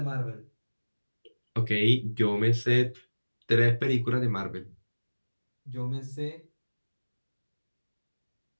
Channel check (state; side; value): inverted; both; correlation -1.00